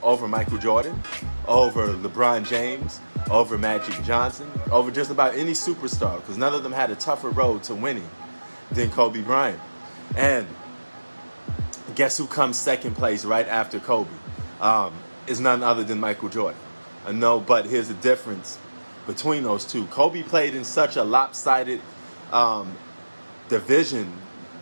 over Michael Jordan, over LeBron James, over Magic Johnson, over just about any superstar, because none of them had a tougher road to winning than Kobe Bryant. And guess who comes second place right after Kobe? Is none other than Michael Jordan. No, but here's the difference between those two. Kobe played in such a lopsided division,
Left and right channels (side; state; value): both; inverted; correlation -1.00